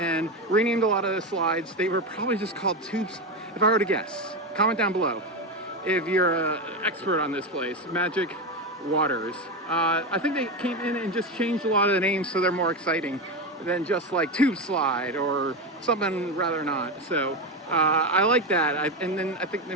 renamed a lot of the slides. They were probably just called tubes, if I were to guess. Comment down below if you're an expert on this place. Magic Waters. I think they came in and just changed a lot of the names so they're more exciting than just like Tube Slide or something rather not. So I like that. And then I think they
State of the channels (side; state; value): both; normal; correlation 0.15